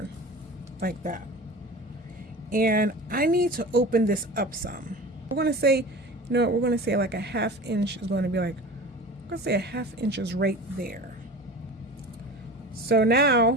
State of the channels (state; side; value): normal; both; correlation 0.36